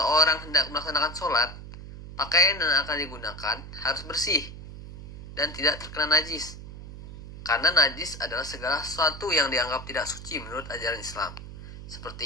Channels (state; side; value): noise; right; hum, 12 dB below the sound